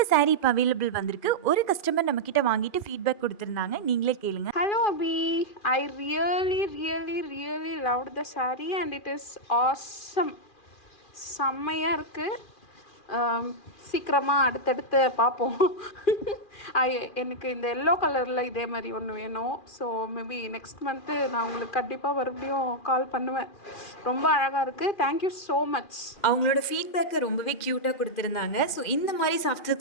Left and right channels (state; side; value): late; right; 2.4 ms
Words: சாரீ இப்போ அவைலபிள் வந்திருக்கு. ஒரு கஸ்டமர் நம்மக்கிட்ட வாங்கிட்டு ஃபீட்பேக் கொடுத்துருந்தாங்க. நீங்களே கேளுங்க. Hello Abhi, I really loved the saree and it is awesome. செம்மையாக இருக்குது. சீக்கிரமாக அடுத்தடுத்து பார்ப்போம். எனக்கு இந்த எல்லோ கலரில் இதே மாதிரி ஒன்று வேணும். ஸோ மேபி நெக்ஸ்ட் மந்த்து நான் உங்களுக்கு கண்டிப்பாக மறுபடியும் கால் பண்ணுவேன். ரொம்ப அழகாக இருக்குது. Thank you so much. அவங்களோட ஃபீட்பேக்கை ரொம்பவே க்யூட்டாக கொடுத்துருந்தாங்க. ஸோ இந்த மாதிரி சாஃப்ட்